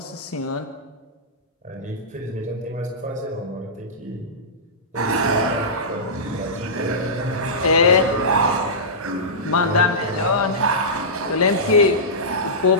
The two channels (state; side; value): normal; both; correlation -0.17